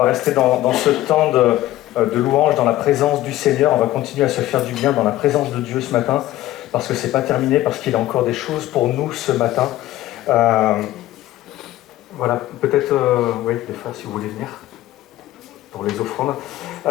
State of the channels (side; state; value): right; quieter; 15.2 dB